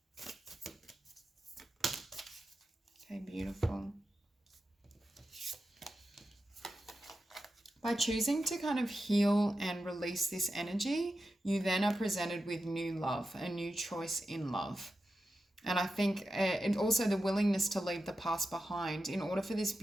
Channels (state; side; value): normal; both; correlation 0.90